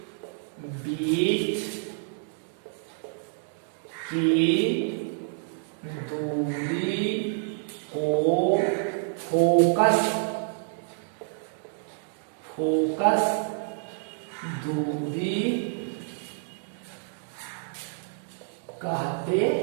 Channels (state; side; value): silent; left; digital silence